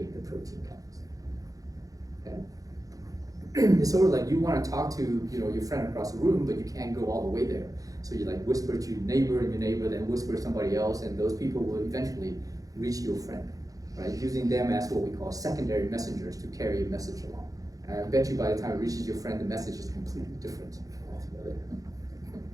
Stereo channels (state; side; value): late; left; 0.17 ms